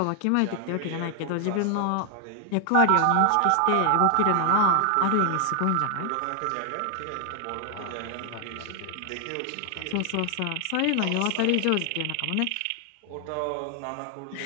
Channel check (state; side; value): different; both; correlation 0.00